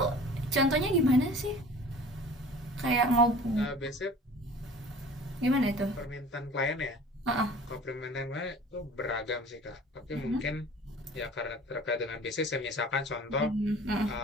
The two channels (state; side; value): normal; both; correlation 0.45